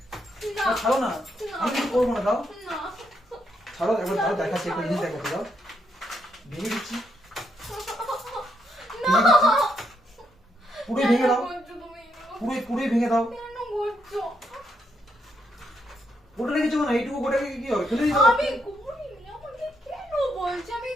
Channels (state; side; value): normal; both; correlation 0.77